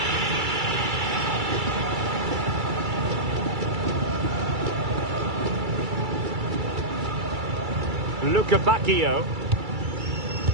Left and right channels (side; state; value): left; late; 2.3 ms